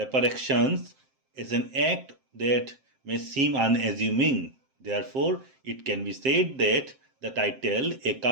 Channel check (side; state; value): left; late; 7.6 ms